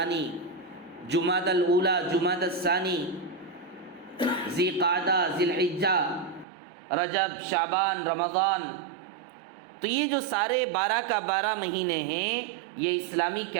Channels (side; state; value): left; drops out; at 6.5 s